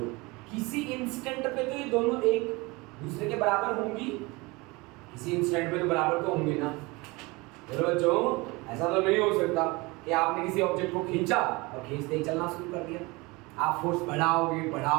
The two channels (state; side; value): quieter; left; 24.5 dB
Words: किसी इंस्टेंट पे तो ये दोनों एक दूसरे के बराबर होंगी, किसी इंस्टेंट पे तो बराबर तो होंगे ना। बच्चों ऐसा तो नहीं हो सकता कि आपने किसी ऑब्जेक्ट को खींचा और खींचते ही चलना शुरू कर दिया, आप फोर्स बढ़ाओगे,